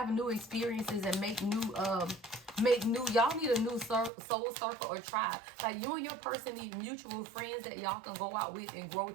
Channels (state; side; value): drops out; left; at 4.1 s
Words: new experiences and make new, y'all need a new soul circle or tribe. Like you and your person need mutual friends that y'all can go out with and grow